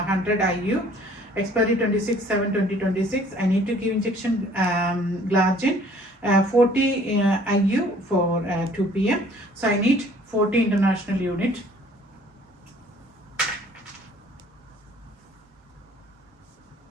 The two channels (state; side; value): normal; both; correlation 0.55